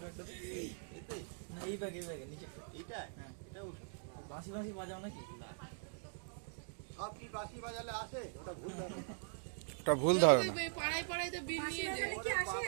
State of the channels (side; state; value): left; silent; digital silence